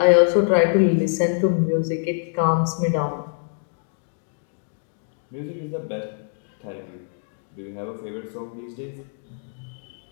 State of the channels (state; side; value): silent; right; digital silence